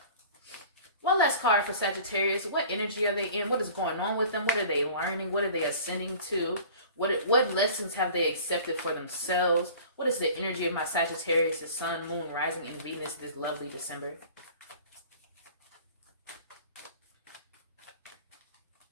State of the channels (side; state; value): both; inverted; correlation -0.45